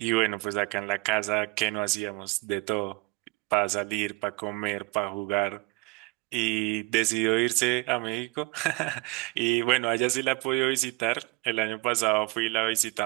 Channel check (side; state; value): left; quieter; 25.6 dB